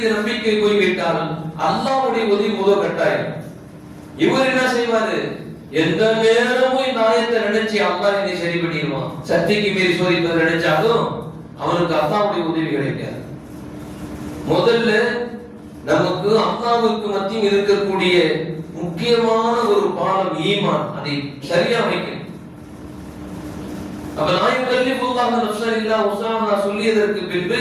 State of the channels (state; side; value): identical; both; correlation 1.00